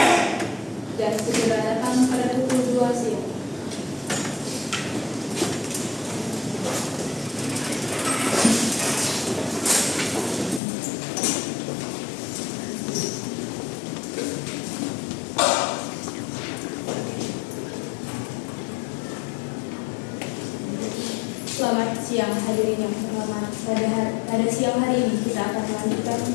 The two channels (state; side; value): drops out; right; at 10.6 s